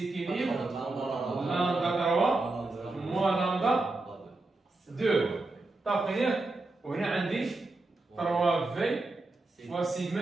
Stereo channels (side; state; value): left; quieter; 3.1 dB